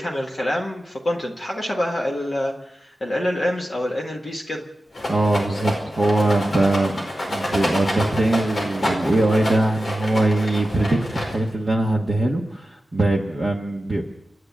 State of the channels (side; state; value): both; normal; correlation 0.93